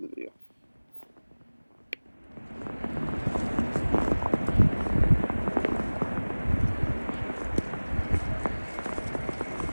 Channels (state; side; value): inverted; both; correlation -1.00